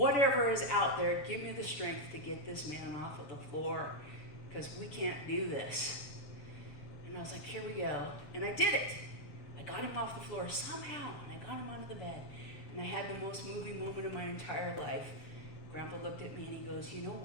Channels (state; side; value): late; right; 7.3 ms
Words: is out there, give me the strength to get this man off of the floor, because we can't do this. And I was like, here we go. And I did it. I got him off the floor somehow, and I got him onto the bed. And I had the most moving moment of my entire life. Grandpa looked at me and he goes, you know